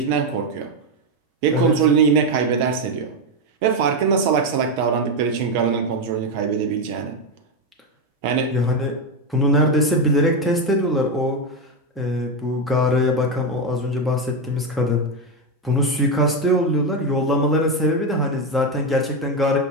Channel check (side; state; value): both; normal; correlation 0.09